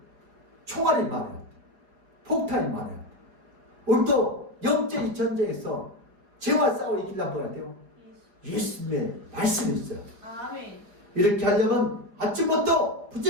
총알이 많아야 돼요. 폭탄이 많아야 돼요. 우리도 영적인 전쟁에서 죄와 싸워 이기려면 뭐야 돼요? 예수님의 말씀이 있어요. 아멘. 이렇게 하려면 아침부터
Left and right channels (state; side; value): late; left; 4.9 ms